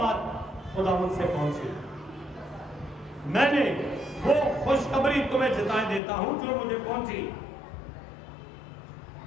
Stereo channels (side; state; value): right; drops out; at 6.0 s